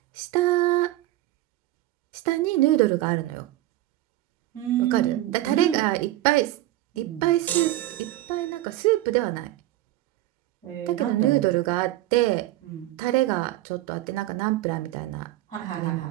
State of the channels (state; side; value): quieter; left; 15.7 dB